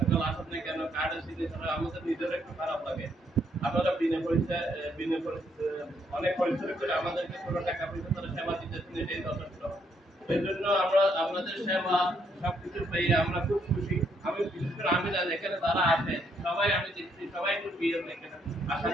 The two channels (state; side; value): normal; both; correlation 0.72